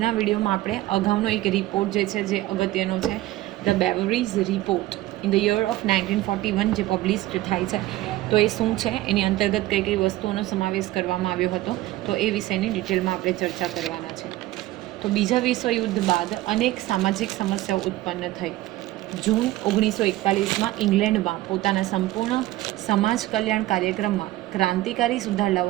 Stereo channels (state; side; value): quieter; left; 16.6 dB